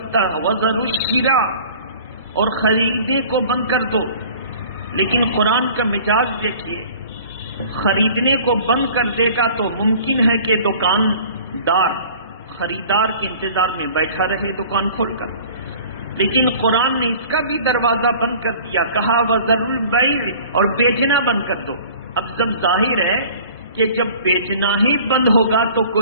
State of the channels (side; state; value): both; inverted; correlation -0.47